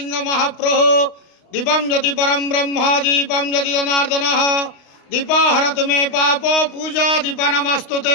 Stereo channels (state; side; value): late; right; 32 ms